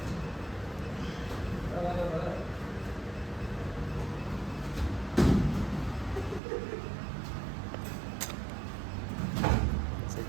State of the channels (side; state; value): left; drops out; at 6.4 s